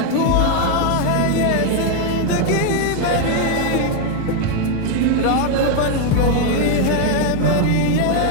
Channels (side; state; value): both; different; correlation 0.01